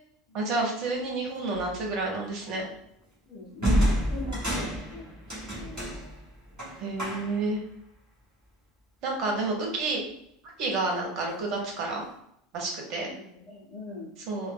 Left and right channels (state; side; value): normal; both; correlation 0.46